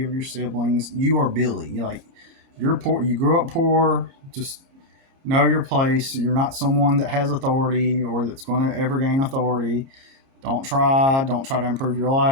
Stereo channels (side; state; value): left; late; 30 ms